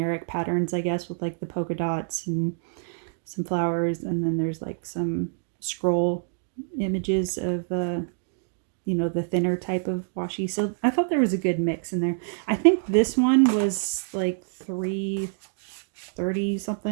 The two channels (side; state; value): left; silent; digital silence